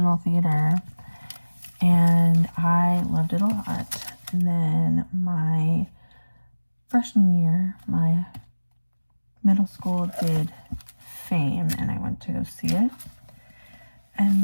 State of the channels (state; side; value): inverted; both; correlation -1.00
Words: theater, and I loved it a lot. And then my freshman year, my middle school did Fame, and I went to go see it. And